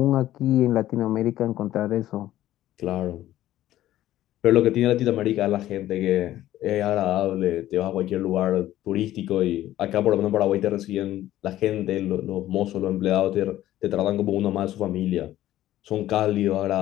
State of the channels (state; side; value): quieter; right; 13.9 dB